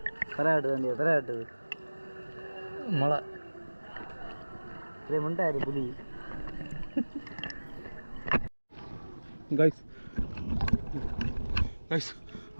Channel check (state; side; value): inverted; both; correlation -1.00